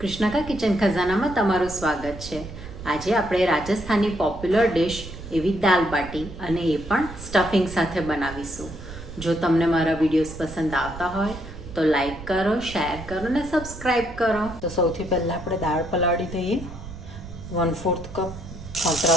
કિચન ખજાનામાં તમારું સ્વાગત છે. આજે આપણે રાજસ્થાની પોપ્યુલર ડિશ એવી દાલ બાટી અને એ પણ સ્ટફિંગ સાથે બનાવીશું. જો તમને મારા વિડીયોઝ પસંદ આવતા હોય તો લાઈક કરો, શેર કરો અને સબસ્ક્રાઈબ કરો. તો સૌથી પહેલાં આપણે દાળ પલાળી દઈએ. 1/4 કપ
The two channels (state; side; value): noise; right; rumble, 13 dB below the sound